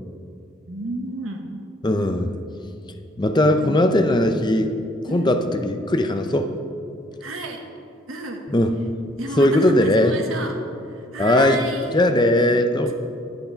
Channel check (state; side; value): normal; both; correlation 0.61